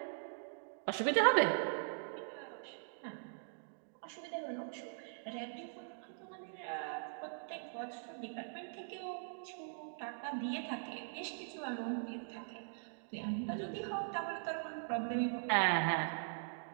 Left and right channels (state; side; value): silent; left; digital silence